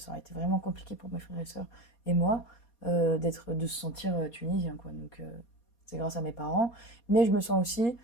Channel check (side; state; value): right; late; 4.2 ms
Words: aurait été vraiment compliqué pour mes frères et sœurs et moi de se sentir tunisien, quoi. Donc, c'est grâce à mes parents. Mais je me sens aussi